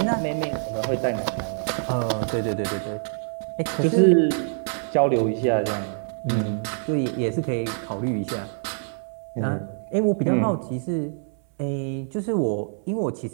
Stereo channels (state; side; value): silent; left; 62 dB below the other